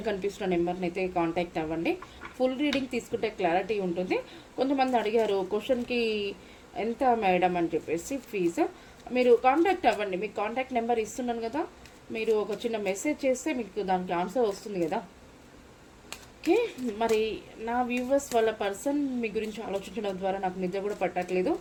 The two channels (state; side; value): identical; both; correlation 1.00